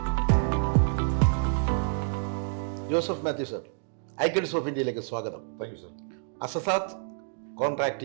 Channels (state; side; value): silent; left; digital silence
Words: Joseph Mathew sir, icons of ഇന്ത്യയിലേക്ക് സ്വാഗതം. Thank you sir. Asasat